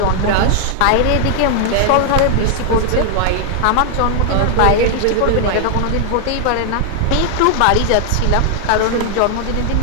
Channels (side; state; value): both; different; correlation 0.00